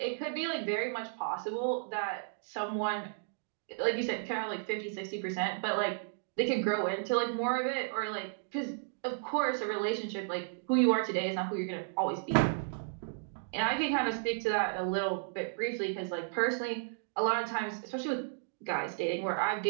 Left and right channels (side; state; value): left; silent; digital silence